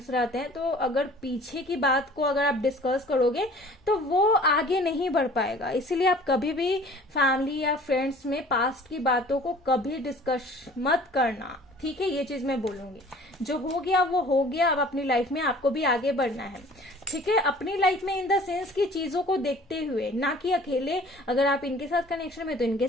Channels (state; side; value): normal; both; correlation 0.49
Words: रहते हैं, तो अगर पीछे की बात को अगर आप डिस्कस करोगे तो वो आगे नहीं बढ़ पाएगा। इसीलिए आप कभी भी फैमिली या फ्रेंड्स में पास्ट की बातों को कभी डिस्कस मत करना, ठीक है। ये चीज मैं बोलूंगी, जो हो गया वो हो गया, अब अपनी लाइफ में आपको भी आगे बढ़ना है, ठीक है। अपनी लाइफ में इन द सेंस की चीजों को देखते हुए, ना कि अकेले। अगर आप इनके साथ कनेक्शन में तो इनके